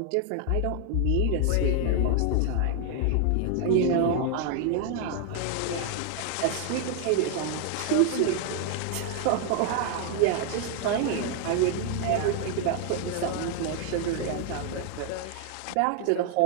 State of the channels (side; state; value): both; different; correlation 0.00